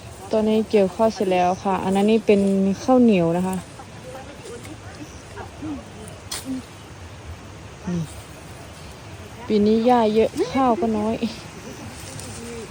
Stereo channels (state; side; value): identical; both; correlation 1.00